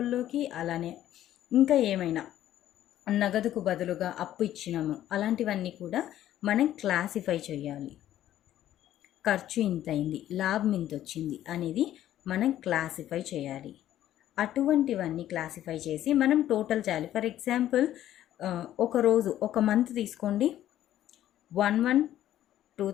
అలానే ఇంకా ఏమైనా నగదుకు బదులుగా అప్పు ఇచ్చినాము అలాంటివన్నీ కూడా మనం క్లాసిఫై చేయాలి. ఖర్చు ఇంత అయింది, లాభం ఇంత వచ్చింది అనేది మనం క్లాసిఫై చేయాలి. అటువంటివన్నీ క్లాసిఫై చేసి మనం టోటల్ చేయాలి. ఫర్ ఎగ్జాంపుల్ ఒక మంత్ తీసుకోండి,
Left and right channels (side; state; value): right; quieter; 12.5 dB